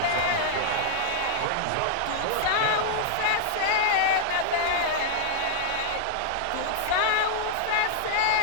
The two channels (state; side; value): different; both; correlation -0.01